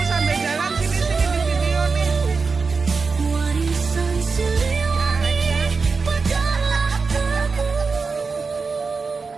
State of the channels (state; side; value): quieter; left; 4.6 dB